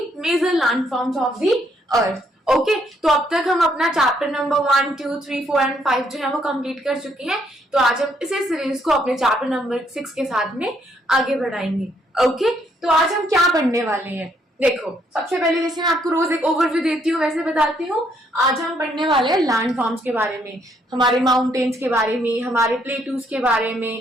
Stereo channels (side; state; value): both; normal; correlation 0.71